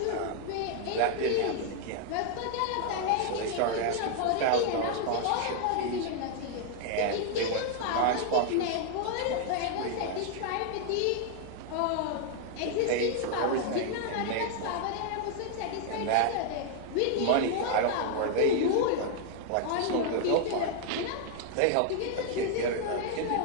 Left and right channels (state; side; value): different; both; correlation 0.00